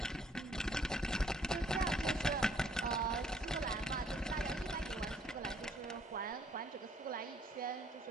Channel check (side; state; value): both; normal; correlation 0.64